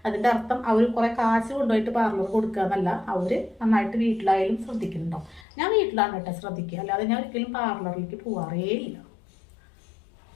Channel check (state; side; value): drops out; right; at 5.5 s